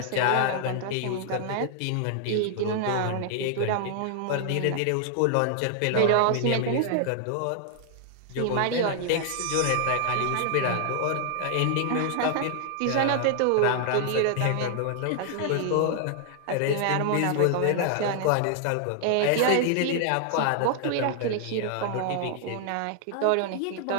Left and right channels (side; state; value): both; different; correlation 0.00